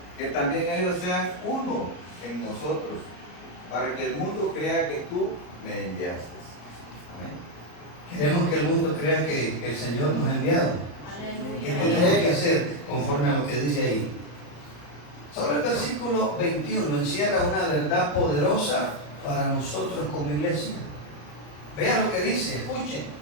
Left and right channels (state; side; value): late; right; 34 ms